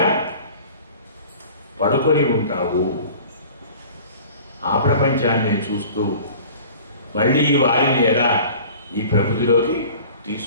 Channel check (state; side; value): inverted; both; correlation -0.44